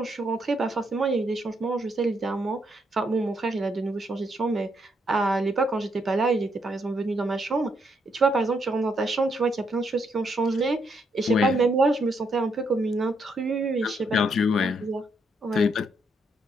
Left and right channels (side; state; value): both; normal; correlation 0.76